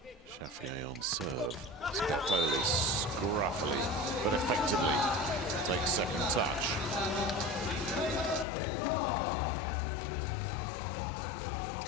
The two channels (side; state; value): right; drops out; at 8.5 s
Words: Chafier on serve. Spertoli scruffily but effectively takes second touch. Like any good setter, he can play that